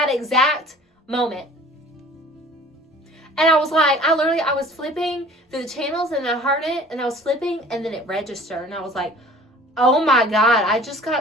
exact moment. And I was like, I was flipping through the channels and I heard it and I was flipping and then it registered. And I was like, oh my God, I just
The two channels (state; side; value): normal; both; correlation 0.48